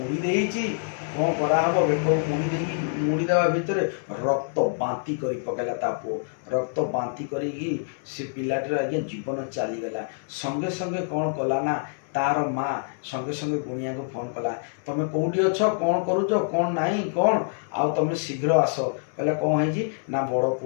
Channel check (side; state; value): right; silent; 61 dB below the other